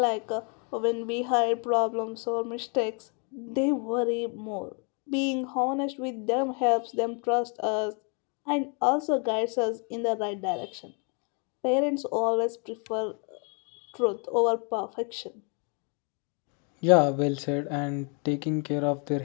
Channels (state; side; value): quieter; right; 36.8 dB